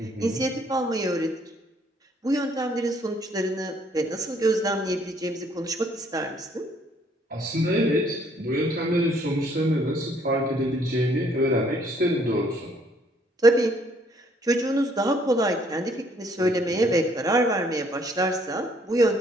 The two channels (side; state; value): both; normal; correlation 0.65